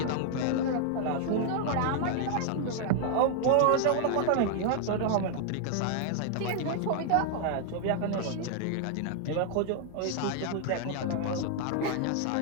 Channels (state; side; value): different; both; correlation 0.00